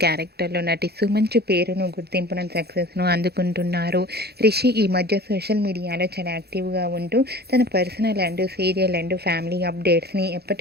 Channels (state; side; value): late; left; 0.47 ms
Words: క్యారెక్టర్లో నటిస్తూ మంచి పేరును, గుర్తింపును, సక్సెస్ను అందుకుంటున్నారు. రిషి ఈ మధ్య సోషల్ మీడియాలో చాలా యాక్టివ్గా ఉంటూ తన personal and serial and family అప్డేట్స్ని